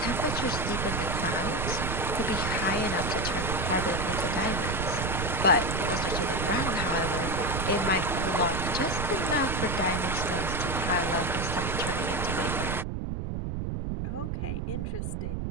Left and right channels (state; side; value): noise; right; rumble, 2 dB below the sound